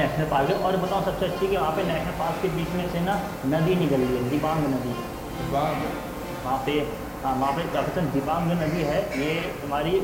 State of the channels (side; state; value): both; identical; correlation 1.00